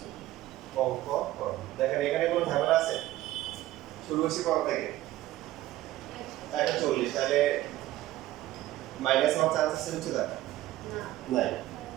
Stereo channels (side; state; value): left; quieter; 15.5 dB